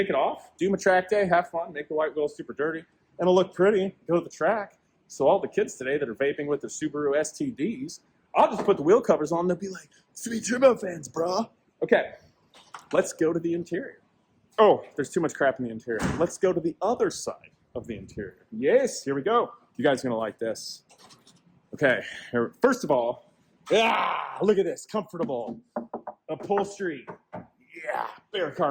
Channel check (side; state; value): both; identical; correlation 1.00